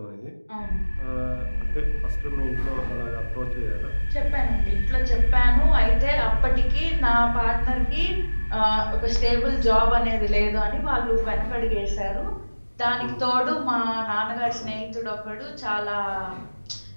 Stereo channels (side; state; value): both; inverted; correlation -1.00